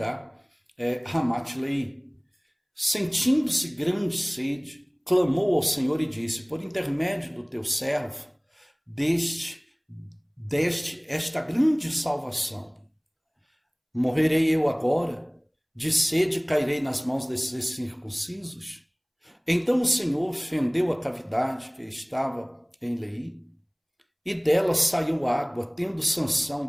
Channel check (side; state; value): both; identical; correlation 1.00